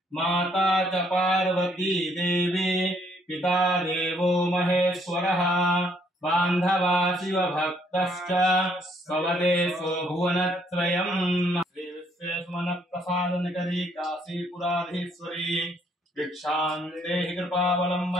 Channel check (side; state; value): both; normal; correlation 0.67